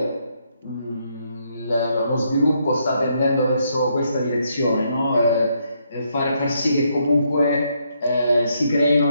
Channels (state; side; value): inverted; both; correlation -0.75